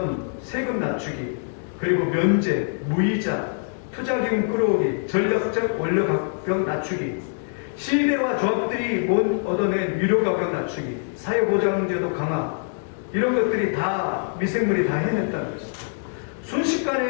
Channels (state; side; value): silent; right; digital silence